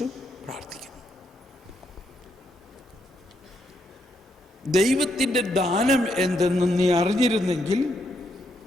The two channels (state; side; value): normal; both; correlation 0.78